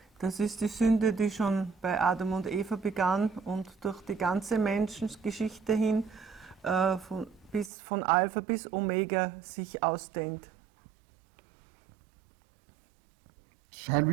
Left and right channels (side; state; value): left; drops out; at 7.7 s